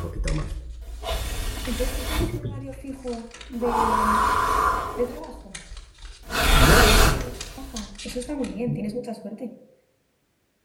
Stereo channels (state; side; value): identical; both; correlation 1.00